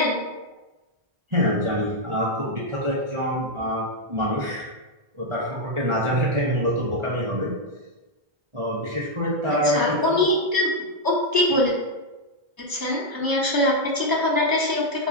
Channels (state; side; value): late; left; 1.0 ms